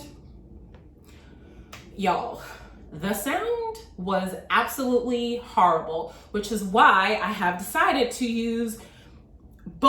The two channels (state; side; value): identical; both; correlation 1.00